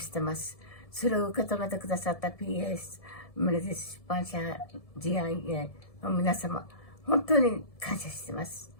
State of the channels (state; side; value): late; right; 1.7 ms